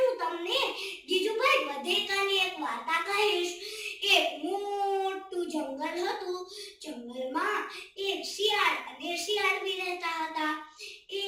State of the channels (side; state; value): both; identical; correlation 1.00